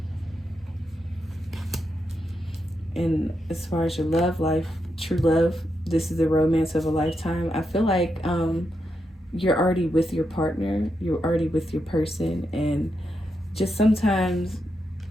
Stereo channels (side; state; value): both; normal; correlation 0.84